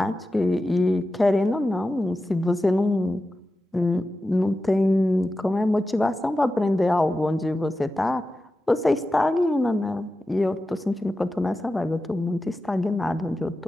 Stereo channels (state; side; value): normal; both; correlation 0.93